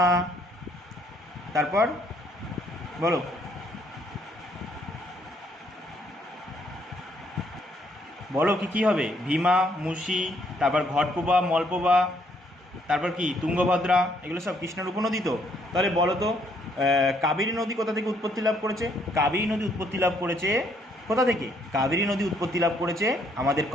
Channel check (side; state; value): both; normal; correlation 0.68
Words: তারপর বলো কি কী হবে? ভীমা, মুসি, তারপর ঘটপ্রভা, মলপ্রভা, তারপর কি তুঙ্গভদ্রা, এগুলো সব কৃষ্ণার উপনদী তো। তাহলে বলো তো কাবেরী নদী কোথা থেকে উৎপত্তি লাভ করেছে? কাবেরী নদী উৎপত্তি লাভ করেছে কোথা থেকে? কাবেরী নদী উৎপত্তি লাভ করেছে আমাদের